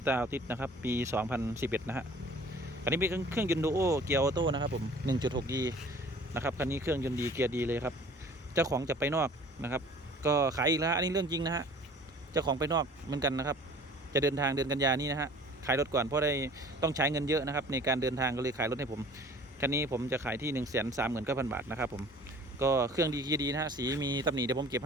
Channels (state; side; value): normal; both; correlation 0.48